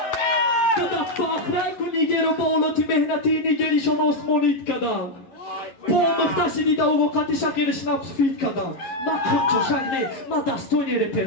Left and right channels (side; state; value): right; late; 11 ms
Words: تو ده فاخره کنی گیرو بالوتی مهنتی نگیری شما اسمونیت کدن پا مختشی دیده و وقتی شکرش نفس فید کدن ما کنچو شگنه ما دستوی نیره